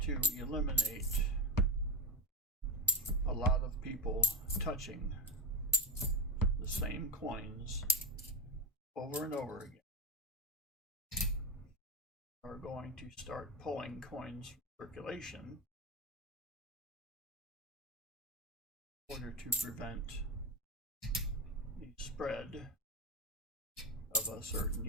to eliminate a lot of people touching the same coins over and over again. We're going to start pulling coins from circulation in order to prevent the spread of a certain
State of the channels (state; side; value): normal; both; correlation 0.15